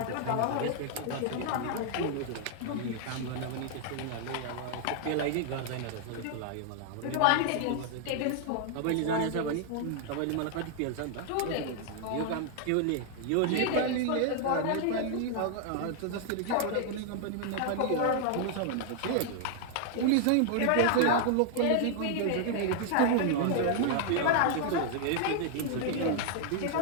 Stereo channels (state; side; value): different; both; correlation 0.00